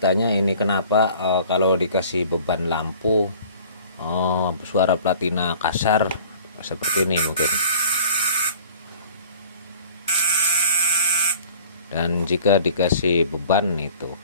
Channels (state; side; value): inverted; both; correlation -0.47